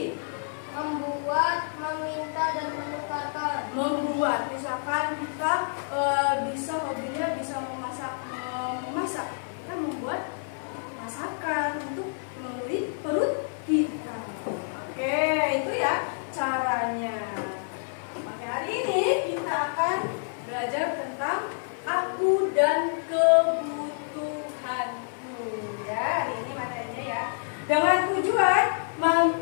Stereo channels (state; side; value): silent; right; digital silence